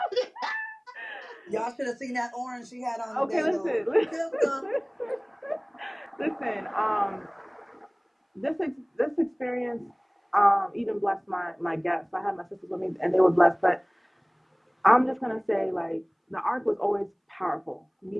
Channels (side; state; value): both; identical; correlation 1.00